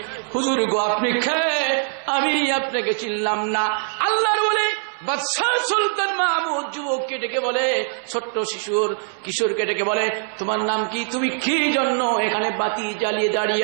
হুজুর গো আপনি খেয়ে আমি আপনাকে চিনলাম না। আল্লাহর বলে বাদশাহ সুলতান মাহমুদ যুবককে ডেকে বলে, ছোট্ট কিশোরকে ডেকে বলে, তোমার নাম কি, তুমি কি জন্য এখানে বাতি জ্বালিয়ে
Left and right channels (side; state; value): left; silent; 61 dB below the other